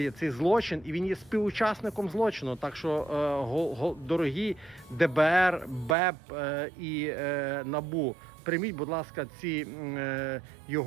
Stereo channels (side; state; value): left; drops out; at 6.0 s